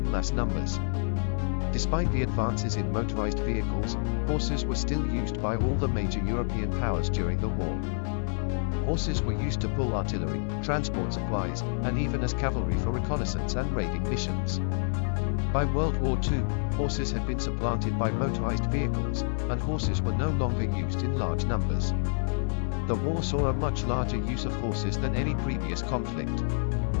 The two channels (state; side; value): silent; right; digital silence